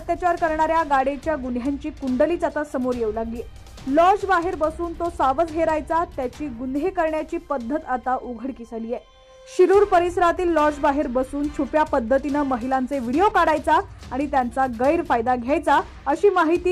करणाऱ्या गाडेच्या गुन्ह्यांची कुंडलीच आता समोर येऊ लागली। लॉज बाहेर बसून तो सावज हेरायचा, त्याची गुन्हे करण्याची पद्धत आता उघडकीस आली आहे। शिरूर परिसरातील लॉज बाहेर बसून छुप्या पद्धतीने महिलांचे व्हिडिओ काढायचा आणि त्यांचा गैरफायदा घ्यायचा, अशी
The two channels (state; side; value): identical; both; correlation 1.00